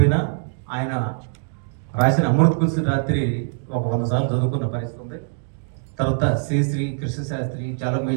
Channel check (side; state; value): left; silent; digital silence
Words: ఆయన రాసిన అమృత కుల్సి రాత్రి ఒక 100 సార్లు చదువుకున్న పరిస్థితి ఉంది. తర్వాత శ్రీ కృష్ణశాస్త్రి, చాలా